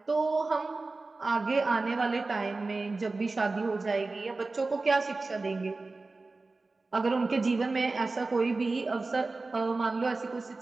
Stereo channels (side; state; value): left; quieter; 3.5 dB